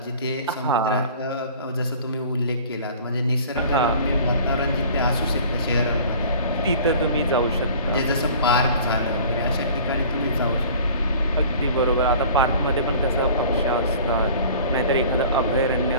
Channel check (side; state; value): both; inverted; correlation -0.46